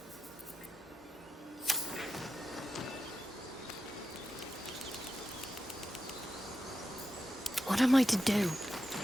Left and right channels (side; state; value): both; normal; correlation 0.89